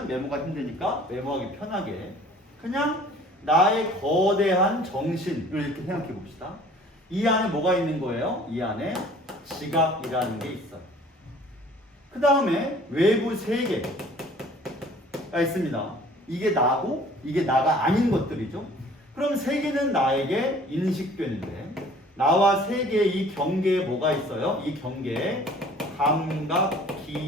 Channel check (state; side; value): normal; both; correlation 0.51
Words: 메모가 힘드니까 메모하기 편하게 그냥 나의 거대한 정신을 이렇게 생각해 봅시다. 이 안에 뭐가 있는 거예요? 이 안에 지각이라는 게 있어요. 그 다음에 외부 세계가 있습니다. 이게 나고 이게 나가 아닌 것들이죠. 그럼 세계는 나에게 인식되는데, 나와 세계의 이 경계에 뭐가 있어요? 이 경계에